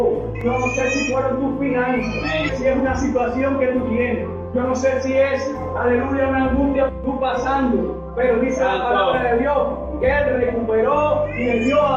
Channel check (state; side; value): identical; both; correlation 1.00